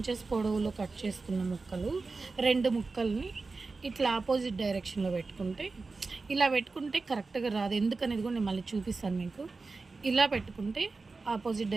పొడవులో కట్ చేసుకున్న ముక్కలు 2 ముక్కల్ని ఇట్లా ఆపోజిట్ డైరెక్షన్లో పెట్టుకుంటే, ఇలా పెట్టుకుంటే కరెక్ట్గా రాదు. ఎందుకనేది కూడా నేను మళ్ళీ చూపిస్తాను మీకు. ఇలా పెట్టుకుంటే ఆపోజిట్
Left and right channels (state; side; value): quieter; left; 4.0 dB